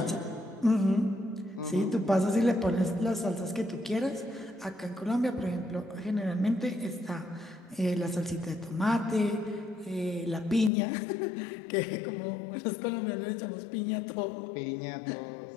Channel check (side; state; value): right; drops out; at 10.7 s